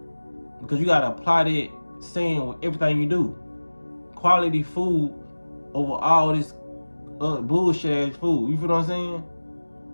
Because you gotta apply that saying with everything you do. Quality food over all this bullshit ass food. You feel what I'm saying?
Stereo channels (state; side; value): inverted; both; correlation -1.00